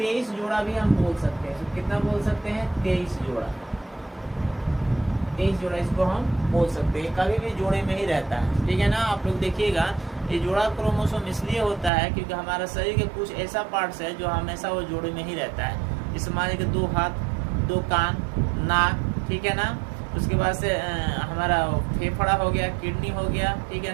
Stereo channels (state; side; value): drops out; left; at 11.9 s